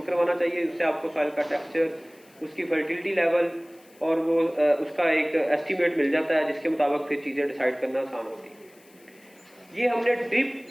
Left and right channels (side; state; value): left; noise; hiss, 29 dB below the sound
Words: करवाना चाहिए, उससे आपको सॉइल का टेक्सचर, उसकी फर्टिलिटी लेवल और वो उसका एक एस्टीमेट मिल जाता है जिसके मुताबिक फिर चीज़ें डिसाइड करना आसान होती है। ये हमने ड्रिप